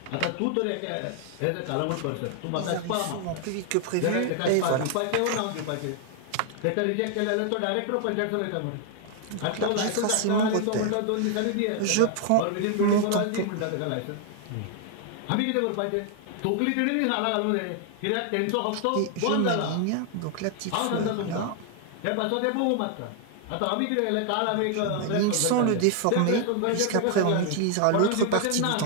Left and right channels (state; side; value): different; both; correlation 0.00